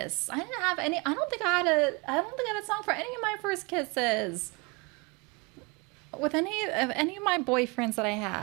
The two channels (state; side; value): quieter; left; 28.6 dB